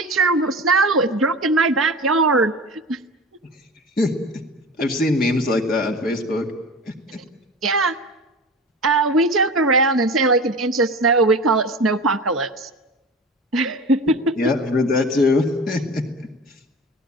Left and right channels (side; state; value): both; normal; correlation 0.33